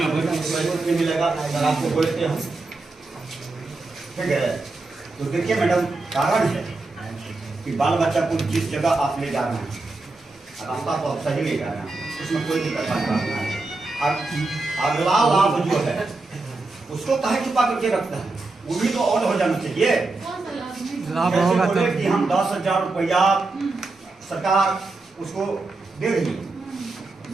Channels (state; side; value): quieter; left; 3.4 dB